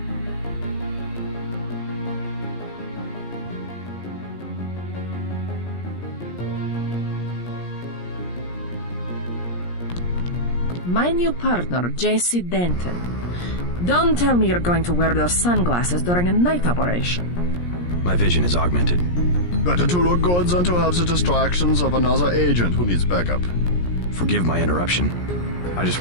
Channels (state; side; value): late; right; 17 ms